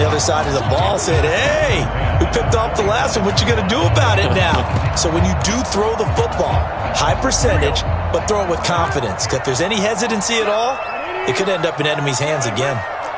other side of the ball, saying, hey, we picked off the last one. What you going to do about it now? So when you do throw the football, high percentage, but throw it with confidence. Because if there's any hesitancy at all, it could end up in enemy's hands again.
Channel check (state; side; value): identical; both; correlation 1.00